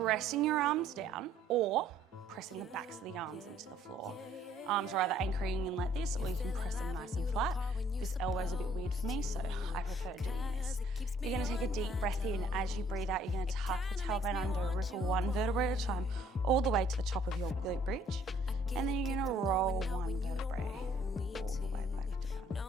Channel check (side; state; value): both; normal; correlation 0.61